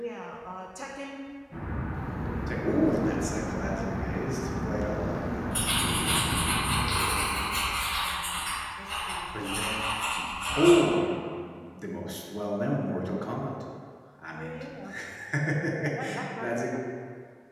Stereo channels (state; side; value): identical; both; correlation 1.00